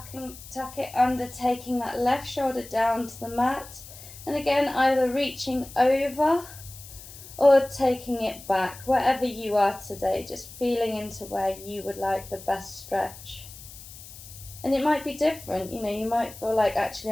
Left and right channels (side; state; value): left; noise; hiss, 16 dB below the sound